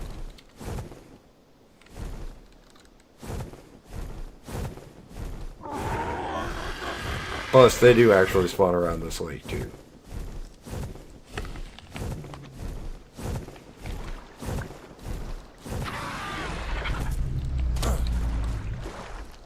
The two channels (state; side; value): identical; both; correlation 1.00